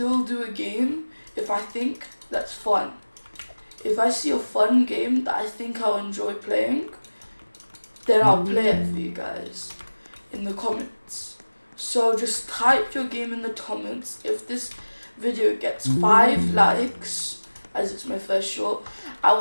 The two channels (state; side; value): inverted; both; correlation -1.00